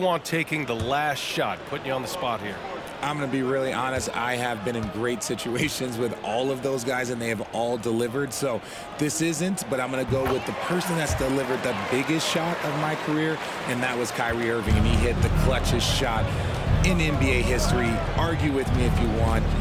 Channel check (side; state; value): both; identical; correlation 1.00